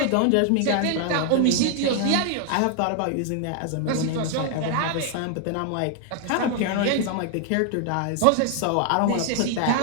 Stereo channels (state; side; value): different; both; correlation 0.00